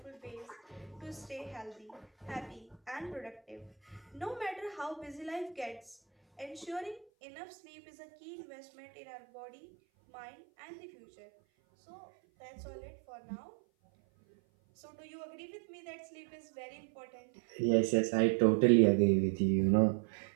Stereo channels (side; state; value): left; drops out; at 7.1 s